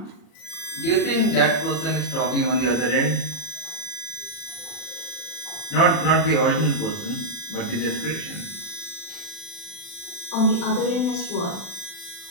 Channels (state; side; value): late; right; 40 ms